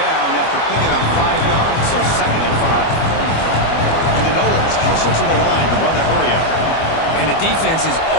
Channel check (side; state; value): right; late; 25 ms